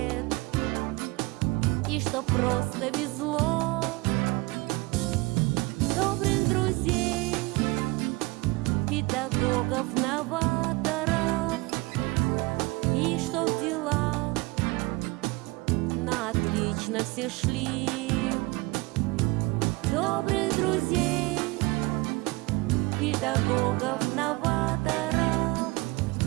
и чтоб просто везло, добрых друзей, педагогов, новаторов, и чтоб дела на отлично все шли. Добрых друзей, педагогов, новаторов,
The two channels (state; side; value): quieter; left; 23.8 dB